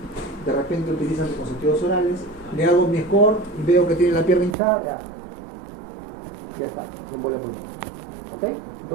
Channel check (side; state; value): left; drops out; at 4.5 s